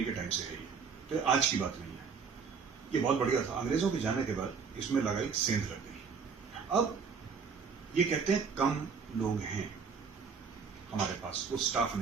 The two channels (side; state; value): left; quieter; 5.8 dB